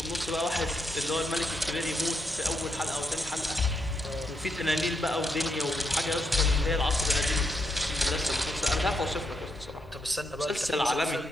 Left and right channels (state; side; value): normal; both; correlation 0.79